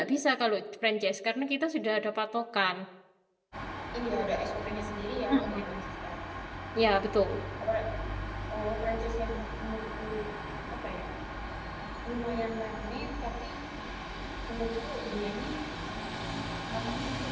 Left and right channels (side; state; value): both; identical; correlation 1.00